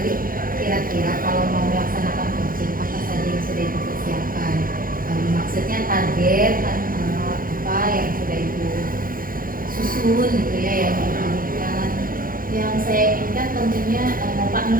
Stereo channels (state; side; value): late; left; 0.41 ms